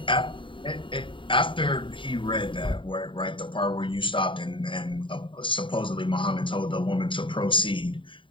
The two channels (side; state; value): right; late; 0.25 ms